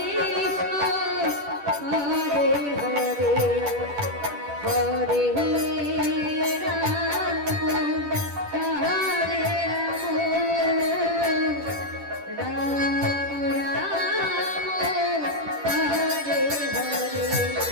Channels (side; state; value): left; late; 10 ms